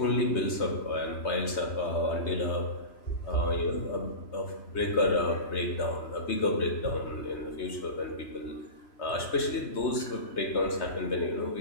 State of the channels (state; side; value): late; right; 3.2 ms